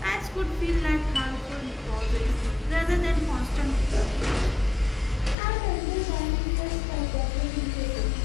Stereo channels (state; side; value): drops out; right; at 5.4 s